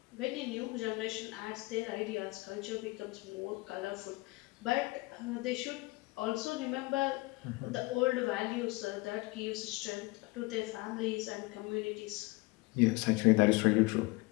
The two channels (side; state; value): right; quieter; 23.5 dB